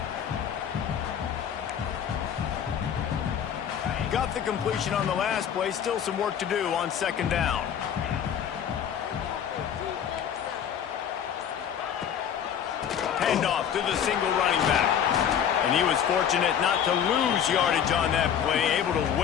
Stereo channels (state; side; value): quieter; right; 8.7 dB